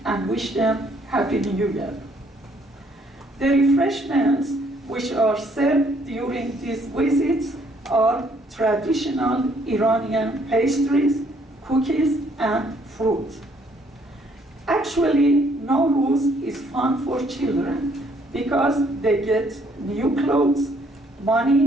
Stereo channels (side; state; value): both; normal; correlation 0.66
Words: and wish them Happy New Year. The refreshments which are served during these visits are traditional Iranian pastries, cookies, and fruit. Actually, NowRuz is fun for children because they get new clothes,